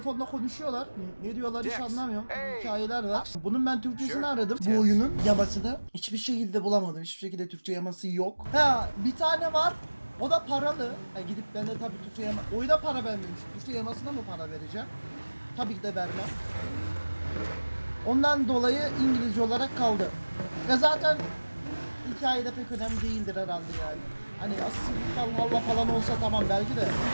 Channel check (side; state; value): both; inverted; correlation -1.00